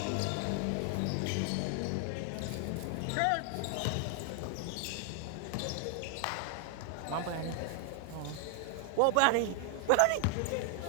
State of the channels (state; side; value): different; both; correlation 0.00